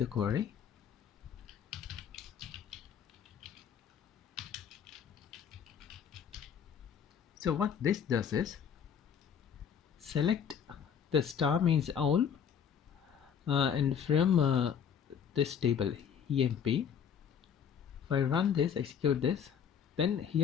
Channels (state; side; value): quieter; right; 7.8 dB